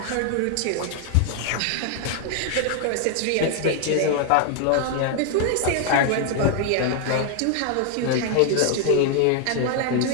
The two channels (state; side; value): different; both; correlation 0.00